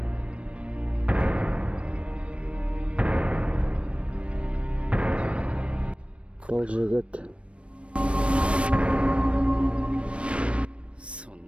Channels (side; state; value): left; late; 0.060 ms